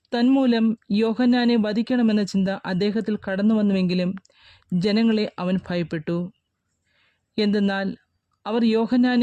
തന്മൂലം യോഹന്നാനെ വധിക്കണമെന്ന ചിന്ത അദ്ദേഹത്തിൽ കടന്നു വന്നുവെങ്കിലും ജനങ്ങളെ അവൻ ഭയപ്പെട്ടു. എന്തെന്നാൽ അവർ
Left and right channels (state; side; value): identical; both; correlation 1.00